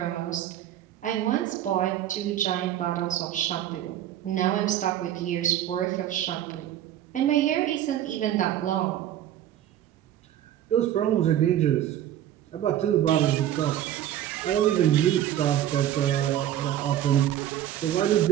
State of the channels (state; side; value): quieter; left; 11.7 dB